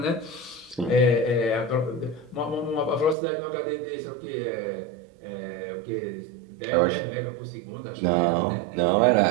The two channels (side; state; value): left; drops out; at 3.2 s